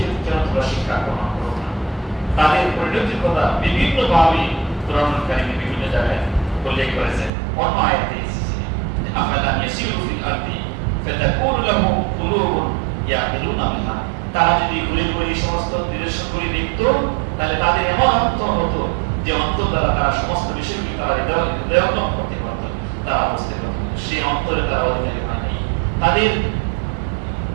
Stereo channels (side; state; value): left; drops out; at 7.3 s